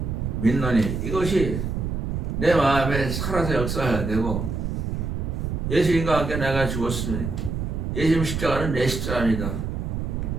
믿노니 이것이 내 마음에 살아서 역사해야 되고, 예수님과 함께 내가 죽었으니 예수님 십자가는 내 십자가입니다.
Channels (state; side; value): noise; right; rumble, 3 dB below the sound